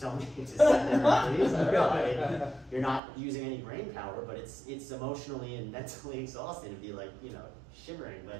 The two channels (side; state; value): left; drops out; at 3.0 s